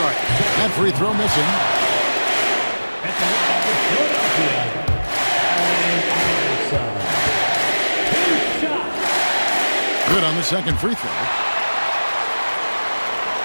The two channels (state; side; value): inverted; both; correlation -1.00